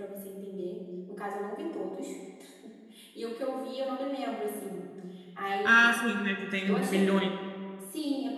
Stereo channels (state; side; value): identical; both; correlation 1.00